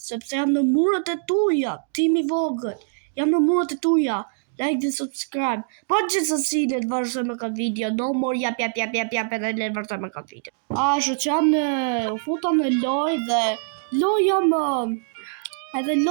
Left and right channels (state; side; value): silent; left; digital silence